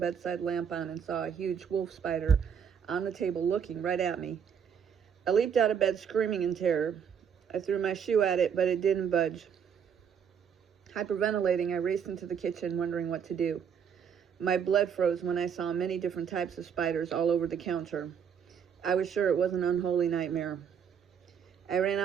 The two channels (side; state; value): left; quieter; 7.6 dB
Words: lamp on and saw a huge wolf spider on the table looking right at me. I leaped out of bed screaming in terror. I threw my shoe at it, but it didn't budge. Hyperventilating, I raced into the kitchen wondering what to do. My blood froze when I saw many different types of spiders all over the counter. I was sure it was an unholy nightmare. I ran